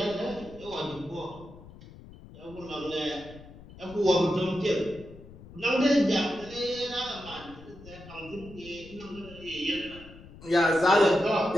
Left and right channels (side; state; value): left; noise; rumble, 18 dB below the sound